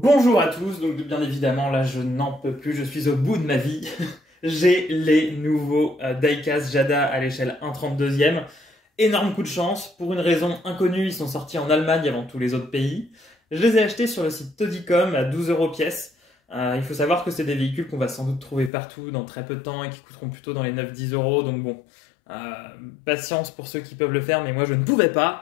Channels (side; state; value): right; drops out; at 18.7 s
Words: à tous, donc bien évidemment là je n'en peux plus, je suis au bout de ma vie. J'ai les nouveaux Diecast Jada à l'échelle 1/32e. Énorme coup de chance, pour une raison inconnue, ils sont sortis en Allemagne avant tous les autres pays. Je les ai achetés sur le site Todicom à 12 euros pièce. Il faut savoir que c'est des véhicules qu'on va sans doute trouver partout dans très peu de temps et qui coûteront plutôt dans les 9-10 euros, donc bon. euh, Patience pour ceux qui peuvent le faire, mais moi je ne pouvais